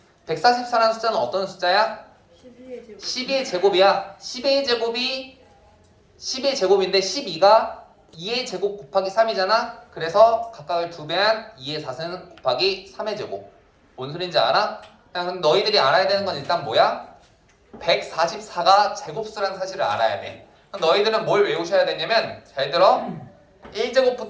144라는 숫자는 어떤 숫자야? 12의 제곱. 12의 제곱이야. 12의 제곱이 10의 제곱인데 12가 2의 제곱 곱하기 3이잖아. 그래서 각각을 2배한 2의 4는 곱하기 3의 제곱. 뭔 소린지 알아? 그냥 너희들이 알아야 되는 건 일단 뭐야? 144가 제곱수라는 사실을 알아야 돼. 그럼 너희들은 뭘 외우셔야 되냐면 잘 들어.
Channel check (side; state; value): both; identical; correlation 1.00